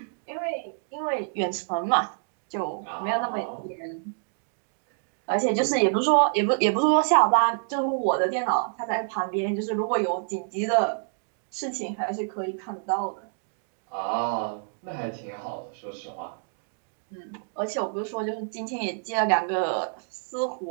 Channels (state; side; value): silent; left; digital silence